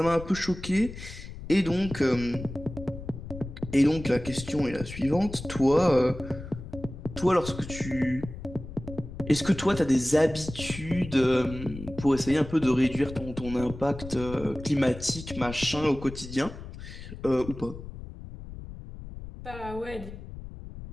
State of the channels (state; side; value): noise; left; rumble, 12 dB below the sound